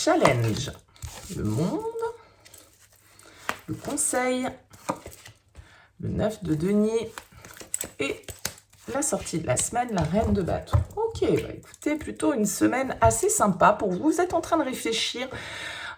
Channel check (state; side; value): identical; both; correlation 1.00